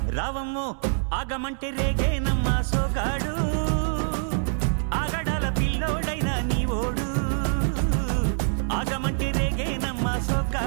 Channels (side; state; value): left; silent; digital silence